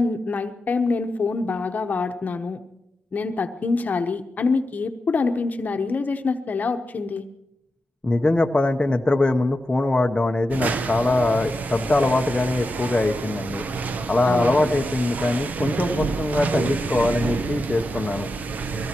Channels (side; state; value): both; normal; correlation 0.89